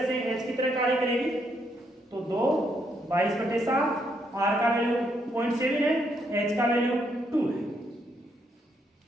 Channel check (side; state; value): both; normal; correlation 0.75